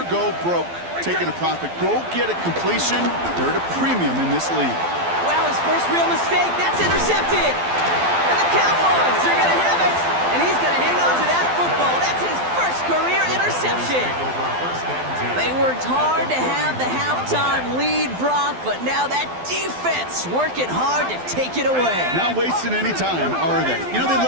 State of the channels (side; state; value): left; late; 12 ms